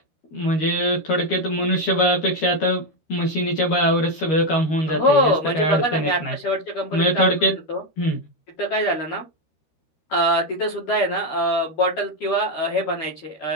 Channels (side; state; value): right; late; 13 ms